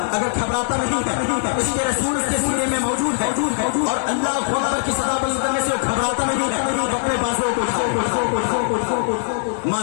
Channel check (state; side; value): silent; right; 65 dB below the other